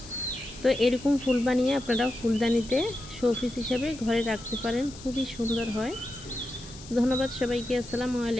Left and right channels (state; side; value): noise; left; hiss, 17 dB below the sound